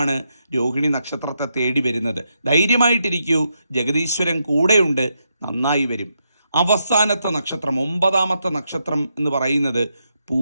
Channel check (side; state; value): both; inverted; correlation -0.82